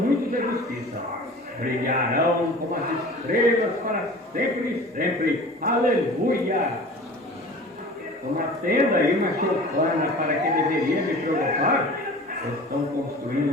de justiça, brilharão como as estrelas para sempre e sempre. Aleluia! Uma tenda e uma choupana para que deveria me provocar, estão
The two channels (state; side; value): normal; both; correlation 0.41